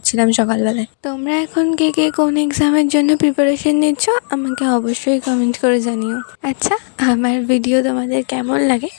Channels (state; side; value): silent; right; digital silence